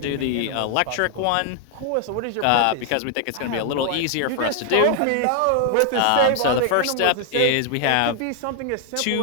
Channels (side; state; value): both; different; correlation 0.00